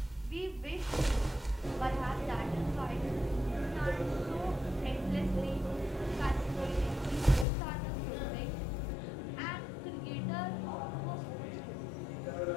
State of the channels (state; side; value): drops out; right; at 7.5 s